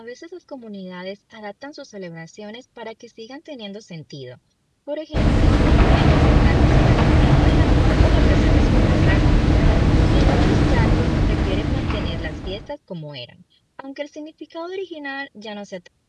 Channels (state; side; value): identical; both; correlation 1.00